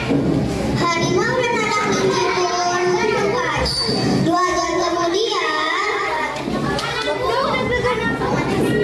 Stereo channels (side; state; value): both; identical; correlation 1.00